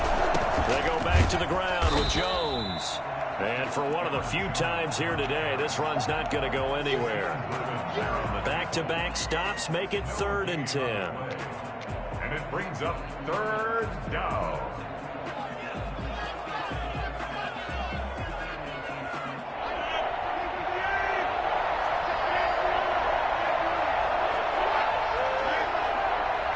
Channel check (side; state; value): both; identical; correlation 1.00